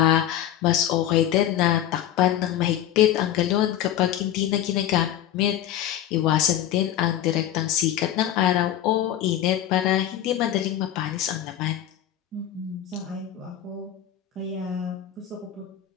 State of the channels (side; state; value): right; quieter; 11.5 dB